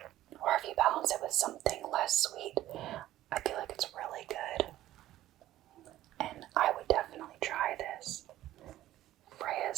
or if you balance it with something less sweet, I feel like it's really good. And I would definitely try this.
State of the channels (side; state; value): left; quieter; 14.2 dB